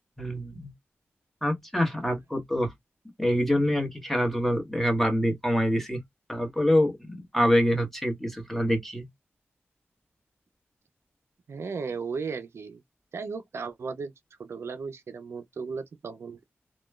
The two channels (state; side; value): normal; both; correlation 0.93